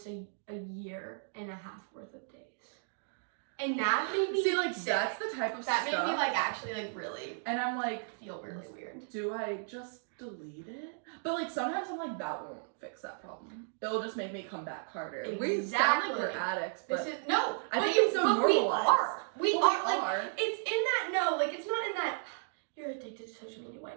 a year and a half worth of days. And that made me See, like, sick. that's the type of That stuff. made me like actually like really And I'm like, feel really weird. do I just delete it? But like sometimes I'm like, that won't fix that problem. It'll just make me come back harder. We sound like we're Exactly. addicts, but This is no. I but think you- it's so but we normalized. are. We Well, are. we Like are. it's in that like it's not in that you're addicted to social media way.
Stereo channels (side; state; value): left; silent; digital silence